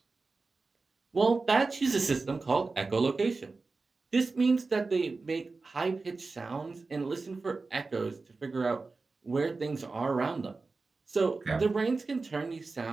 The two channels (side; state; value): left; quieter; 3.9 dB